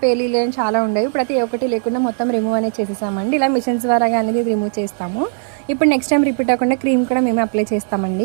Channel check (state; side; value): silent; left; digital silence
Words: పేలీలు చాలా ఉండేవి. ఇప్పుడైతే ఏ ఒక్కటి లేకుండా మొత్తం రిమూవ్ అనేది చేసేసామండి. ఇలా మిషన్స్ ద్వారా అనేది రిమూవ్ చేస్తాము. ఇప్పుడు నెక్స్ట్ టైం రిపీట్ అవ్వకుండా క్రీమ్ కూడా మేమే అప్లై